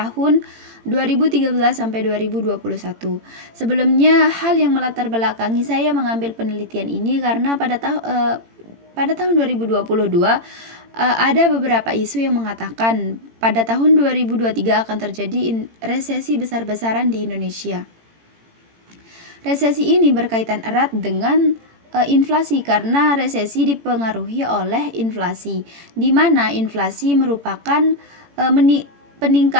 2013 sampai 2021. Sebelumnya, hal yang melatar belakangi saya mengambil penelitian ini karena pada tahun 2022 ada beberapa isu yang mengatakan pada tahun 2023 akan terjadi resesi besar-besaran di Indonesia. Resesi ini berkaitan erat dengan inflasi karena resesi dipengaruhi oleh inflasi, di mana inflasi merupakan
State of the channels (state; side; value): late; left; 18 ms